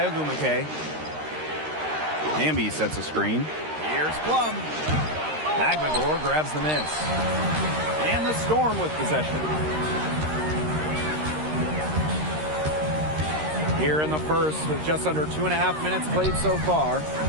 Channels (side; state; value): left; late; 13 ms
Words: Ogumake. Hamby sets a screen. Here's Plum. Agbagor grabs the miss. And the Storm with possession. Here in the first with just under 2.5 minutes played so far.